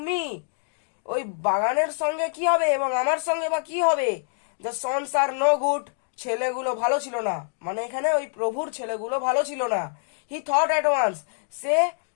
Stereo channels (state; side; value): silent; right; digital silence